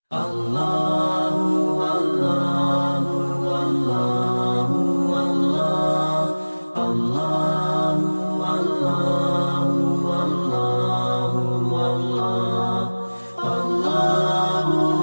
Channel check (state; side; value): inverted; both; correlation -1.00